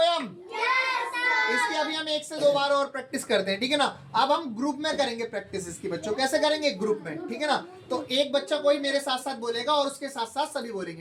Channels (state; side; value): identical; both; correlation 1.00